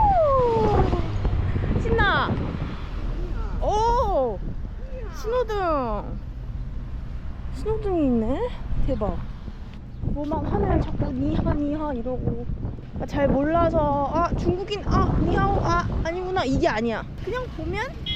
신나. 오 신호등이 있네. 대박. 뭐만 하면 자꾸 니하 이러고 잘 몰라서 아 중국인 니하오 아니구나 이게 아니야. 그냥 보면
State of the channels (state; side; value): identical; both; correlation 1.00